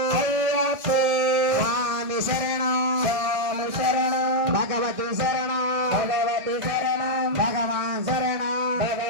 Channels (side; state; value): left; late; 1.7 ms